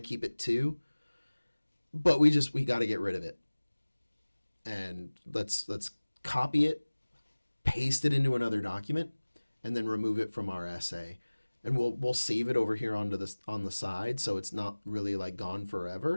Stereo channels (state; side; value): inverted; both; correlation -1.00